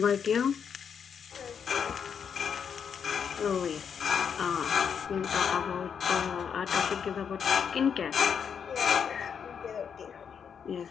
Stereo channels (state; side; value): quieter; right; 7.2 dB